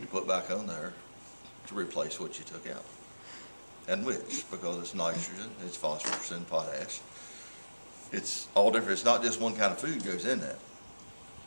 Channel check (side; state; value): both; inverted; correlation -1.00